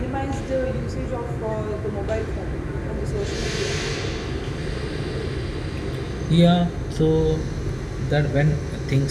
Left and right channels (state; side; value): identical; both; correlation 1.00